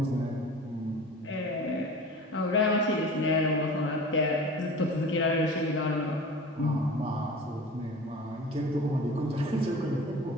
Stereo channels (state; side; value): normal; both; correlation 0.38